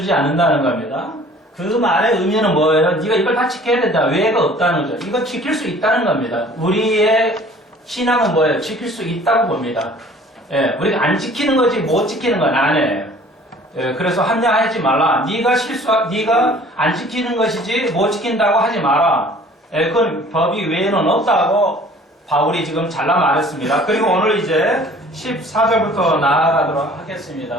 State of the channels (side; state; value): both; normal; correlation 0.51